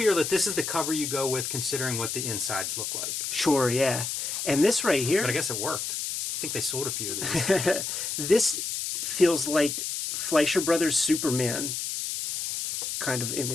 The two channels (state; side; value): noise; left; hiss, 3 dB below the sound